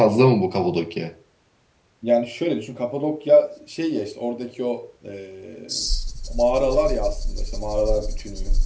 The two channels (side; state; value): both; identical; correlation 1.00